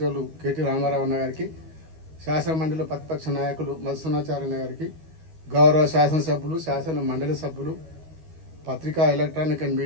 కేటీ రామారావు అన్న గారికి, శాసనమండలిలో ప్రతిపక్ష నాయకులు మధుసూనాచార్య గారికి, గౌరవ శాసనసభ్యులు, శాసన మండలి సభ్యులు, పత్రికా, ఎలక్ట్రానిక్ అండ్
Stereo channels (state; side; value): late; left; 12 ms